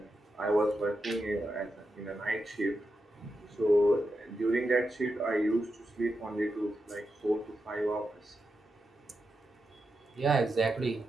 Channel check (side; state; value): both; normal; correlation 0.87